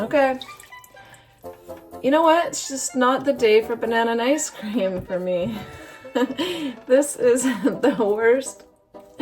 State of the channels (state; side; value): identical; both; correlation 1.00